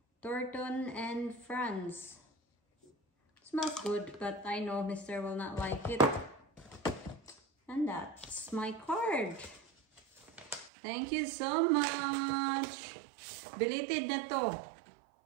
Thornton and Friends. Smells good, but I know Mr. will not like it. And that's my card. Thank you so much. Belated na to.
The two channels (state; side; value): drops out; left; at 10.7 s